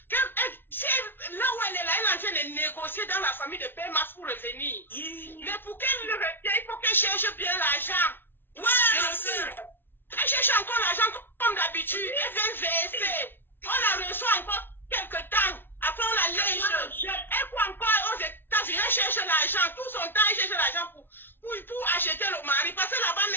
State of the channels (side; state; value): right; late; 0.10 ms